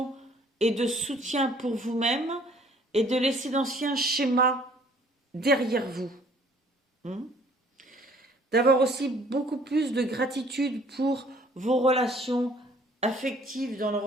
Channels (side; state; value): both; normal; correlation 0.57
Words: et de soutien pour vous-même et de laisser d'anciens schémas derrière vous. D'avoir aussi beaucoup plus de gratitude pour vos relations affectives dans